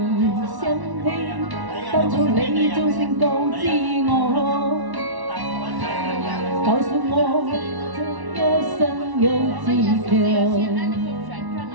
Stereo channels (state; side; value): late; left; 1.1 ms